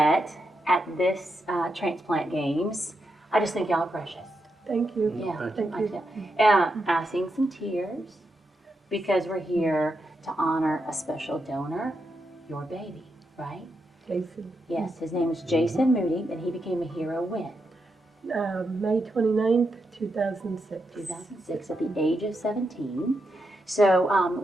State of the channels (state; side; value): normal; both; correlation 0.84